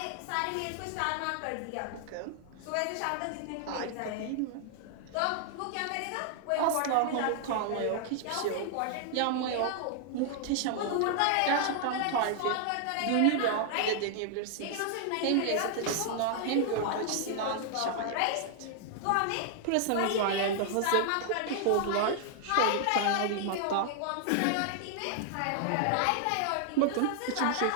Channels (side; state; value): both; different; correlation 0.00